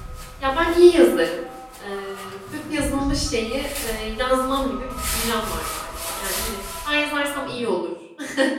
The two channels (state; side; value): identical; both; correlation 1.00